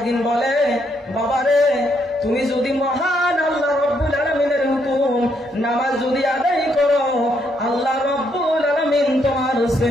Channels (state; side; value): normal; both; correlation 0.74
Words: বলে, বাবারে তুমি যদি মহান আল্লাহ রব্বুল আলামিনের হুকুম নামাজ যদি আদায় করো, আল্লাহ রব্বুল আলামিন তোমার